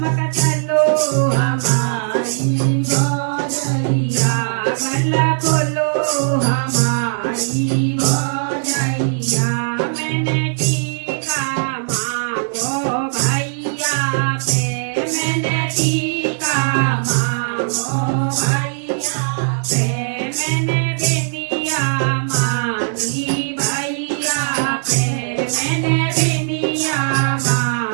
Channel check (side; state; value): left; silent; digital silence